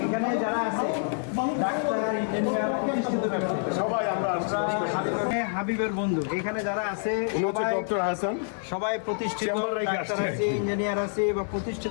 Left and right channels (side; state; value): right; silent; 60 dB below the other